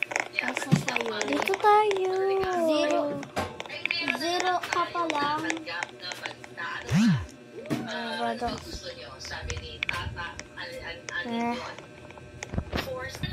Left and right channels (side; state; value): both; identical; correlation 1.00